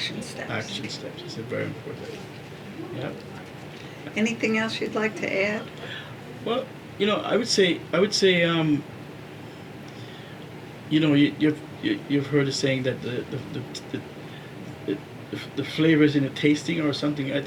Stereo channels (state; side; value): identical; both; correlation 1.00